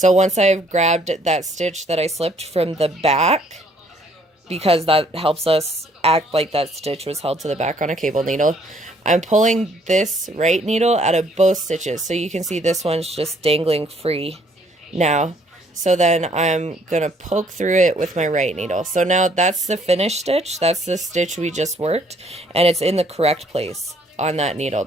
once I've grabbed that stitch that I slipped from the back, because that helps us act like that stitch was held to the back on a cable needle, I'm pulling this right needle out of both stitches. So you can see this one's just dangling free now. So then I'm going to poke through it with my right needle. So now that's the finished stitch. That's the stitch we just worked, and it's in the correct place on that needle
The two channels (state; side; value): normal; both; correlation 0.64